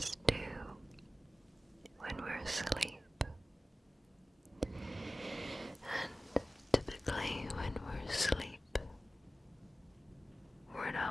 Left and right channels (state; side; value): normal; both; correlation 0.96